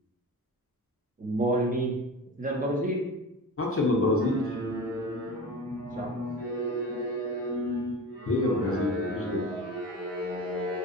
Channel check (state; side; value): normal; both; correlation 0.32